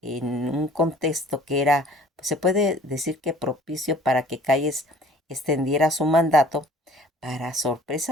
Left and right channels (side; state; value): both; normal; correlation 0.51